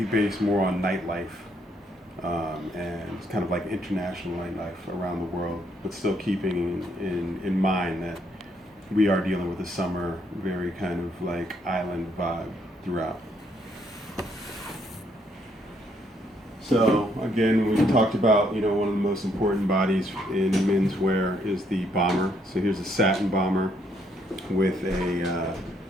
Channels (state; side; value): normal; both; correlation 0.71